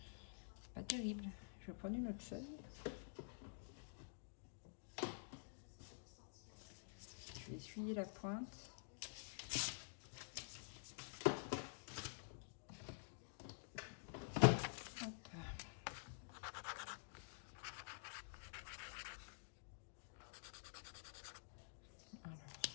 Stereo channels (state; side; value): silent; right; digital silence